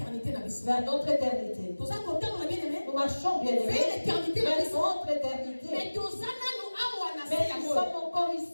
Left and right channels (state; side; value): inverted; both; correlation -1.00